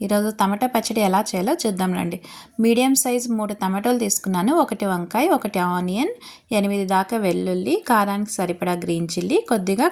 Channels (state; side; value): identical; both; correlation 1.00